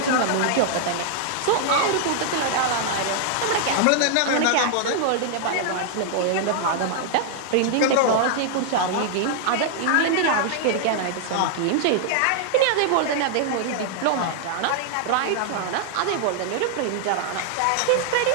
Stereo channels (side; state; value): both; different; correlation -0.01